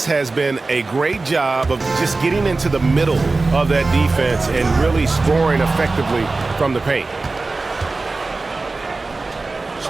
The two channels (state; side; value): quieter; left; 3.5 dB